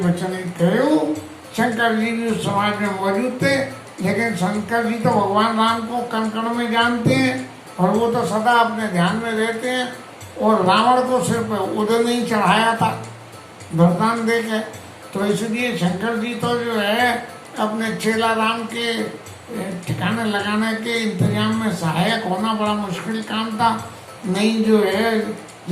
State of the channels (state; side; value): identical; both; correlation 1.00